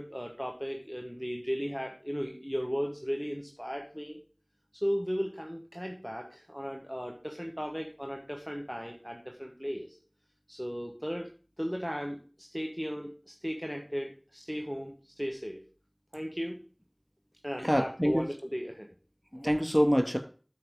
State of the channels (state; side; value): identical; both; correlation 1.00